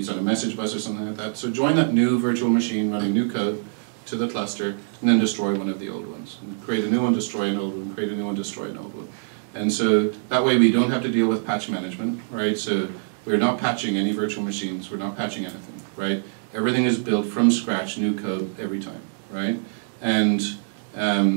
on a message bus or something like that. So join that new virtual machine running new code to the cluster, and then destroy one of the old ones. And create a new one, destroy an old one, create a new one, destroy an old one. And so that way we don't have to deal with patch management, right? So we're not patching any virtual machines, we're not patching anything, right? Everything is built from scratch, new code every time, right? And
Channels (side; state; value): left; silent; 60 dB below the other